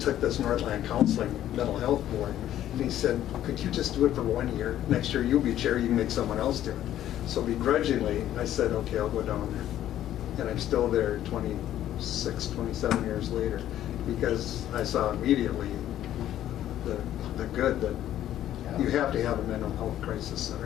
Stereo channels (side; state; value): right; quieter; 12.1 dB